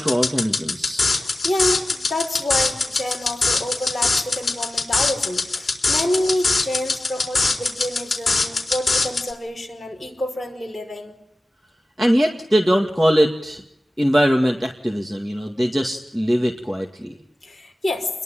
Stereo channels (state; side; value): normal; both; correlation 0.95